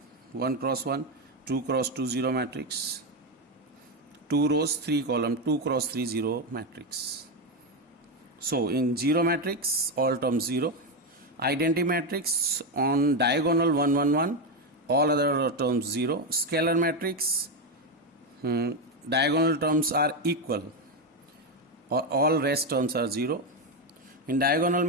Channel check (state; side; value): normal; both; correlation 0.09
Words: 1 cross 1, 2 cross 2 0 matrix. 2 rows 3 column, 2 cross 3 0 matrix. So in zero matrix, all terms 0. Identity matrix on diagonal 1 1 1, all other terms 0. Scalar matrix, diagonal terms are equal or all rest terms are 0. In diagonal